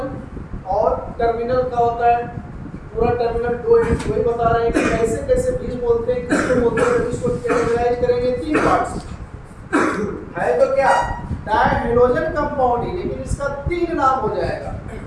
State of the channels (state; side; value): identical; both; correlation 1.00